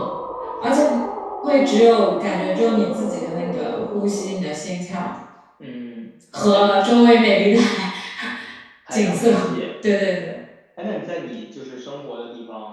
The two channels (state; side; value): identical; both; correlation 1.00